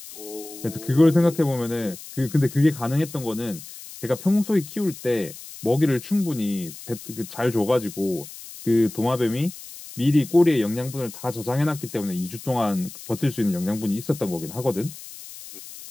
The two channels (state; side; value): noise; left; hiss, 15 dB below the sound